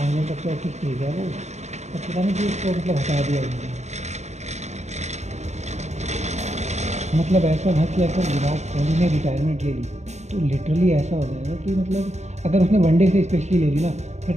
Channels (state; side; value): late; left; 0.33 ms